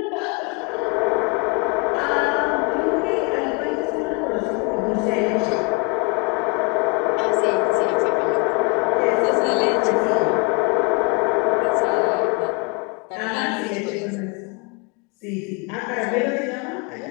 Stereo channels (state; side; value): quieter; right; 27.8 dB